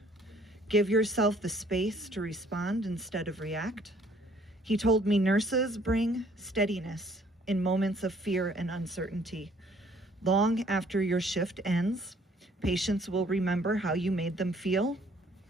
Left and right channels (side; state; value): both; normal; correlation 0.60